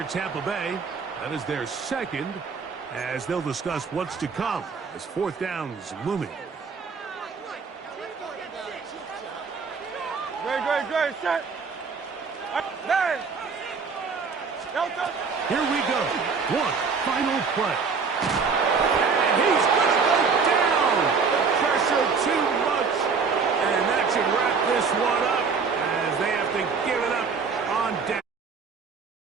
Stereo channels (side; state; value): left; quieter; 5.3 dB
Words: Tampa Bay. That is their second, as they'll discuss what's to come as fourth down is looming. Great, set. Nine. Here we go. One final play. And he's going to go down. The pressure too much. And that should wrap this one up as they have to give it up on down.